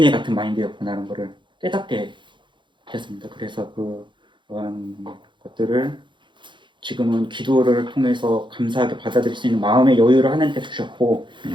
같은 마인드였구나라는 것을 깨닫게 됐습니다. 그래서 그러한 것들을 지금은 기도를 통해서 감사하게 받아들일 수 있는 마음의 여유를 하나님께서 주셨고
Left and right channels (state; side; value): late; left; 0.23 ms